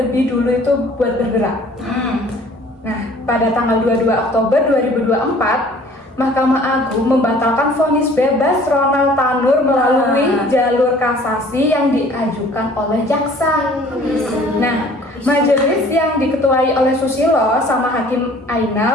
dulu itu buat bergerak. Nah, pada tanggal 22 Oktober 2024, Mahkamah Agung membatalkan vonis bebas Ronald Tanur melalui jalur kasasi yang diajukan oleh jaksa. Nah, majelis yang diketuai oleh Susilo sama Hakim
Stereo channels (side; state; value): both; normal; correlation 0.52